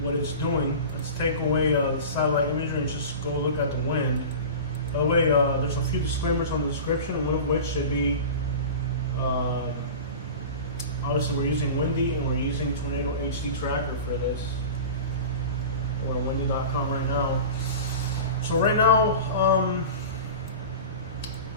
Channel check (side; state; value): both; inverted; correlation -0.33